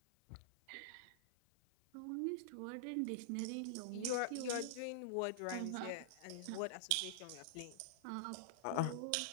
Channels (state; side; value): different; both; correlation -0.02